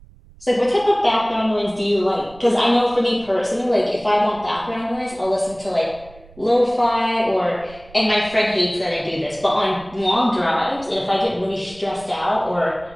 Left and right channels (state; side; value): noise; right; rumble, 23 dB below the sound